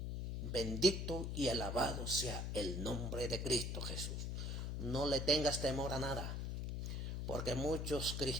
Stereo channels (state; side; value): noise; left; hum, 2 dB below the sound